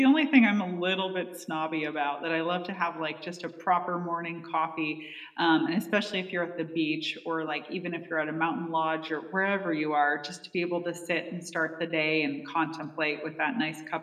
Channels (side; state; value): both; identical; correlation 1.00